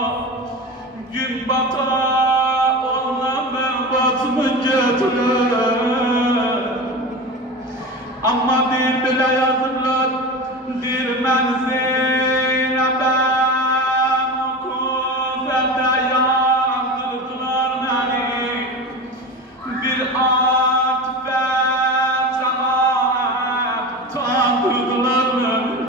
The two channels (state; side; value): normal; both; correlation 0.27